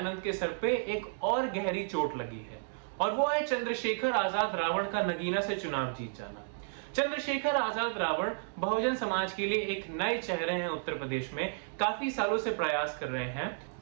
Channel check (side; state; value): left; silent; digital silence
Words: के सर पे एक और गहरी चोट लगी है, और वो है चंद्रशेखर आजाद रावण का नगीना से चुनाव जीत जाना। चंद्रशेखर आजाद रावण बहुजन समाज के लिए एक नए चेहरे हैं उत्तर प्रदेश में, काफी सालों से प्रयास कर रहे हैं।